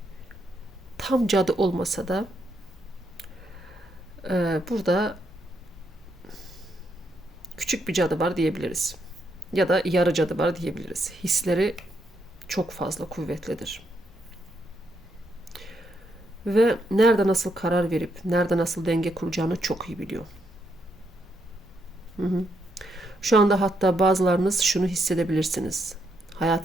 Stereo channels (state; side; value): normal; both; correlation 0.78